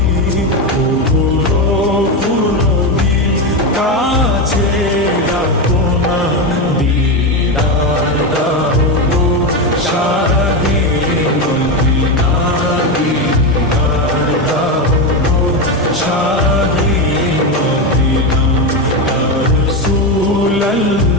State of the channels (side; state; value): both; normal; correlation 0.13